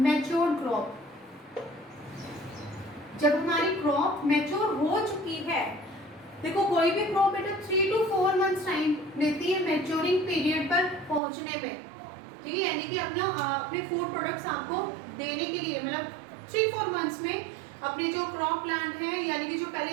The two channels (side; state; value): left; drops out; at 11.2 s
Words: crop. जब हमारी क्रॉप मैच्योर हो चुकी है, देखो कोई भी क्रॉप बेटा 3 to 4 मंथ्स टाइम लेती है मैच्योरिंग पीरियड पर पहुंचने में, ठीक है, यानी कि अपने फूड प्रोडक्ट्स आपको देने के लिए, मतलब 3-4 मंथ्स में अपने जो क्रॉप प्लांट है, यानी कि जो